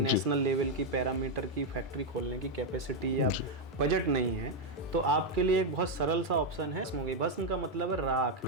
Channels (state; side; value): normal; both; correlation 0.03